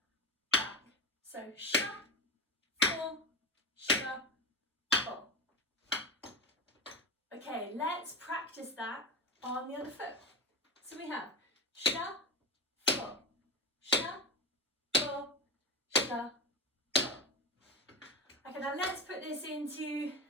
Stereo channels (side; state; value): both; normal; correlation 0.21